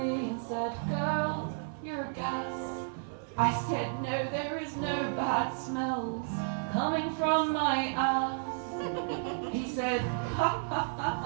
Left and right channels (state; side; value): silent; left; 56 dB below the other